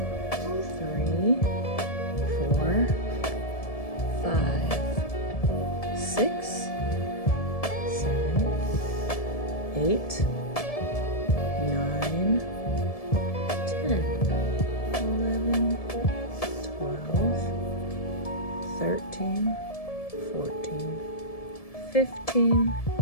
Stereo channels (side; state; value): right; late; 1.7 ms